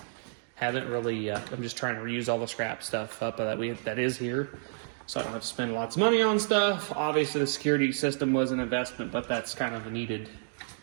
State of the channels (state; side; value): silent; left; digital silence